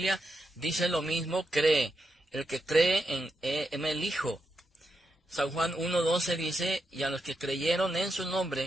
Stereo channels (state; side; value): normal; both; correlation 0.84